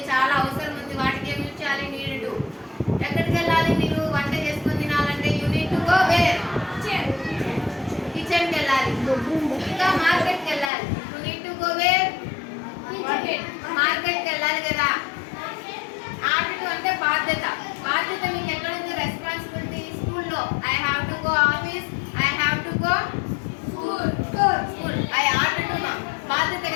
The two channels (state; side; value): drops out; right; at 10.7 s